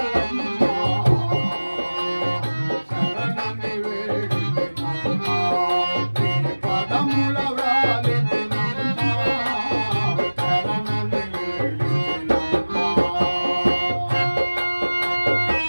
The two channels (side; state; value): both; inverted; correlation -1.00